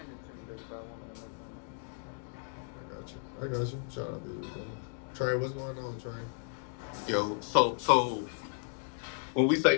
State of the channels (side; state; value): right; silent; digital silence